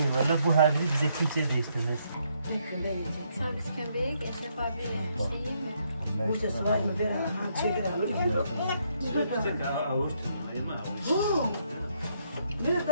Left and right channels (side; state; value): both; inverted; correlation -0.71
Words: valla bu haviri bize kimse değiştirmez. Servis kömbeği Eşref abi şey mi? Bu ses var mı? Ben çeker alırım. Bir